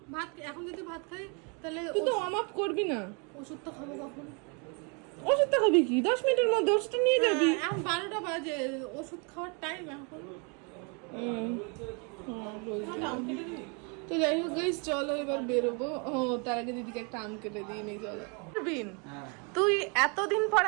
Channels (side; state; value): left; quieter; 34.6 dB